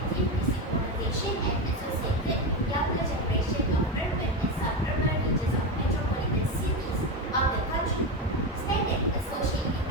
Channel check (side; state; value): both; normal; correlation 0.15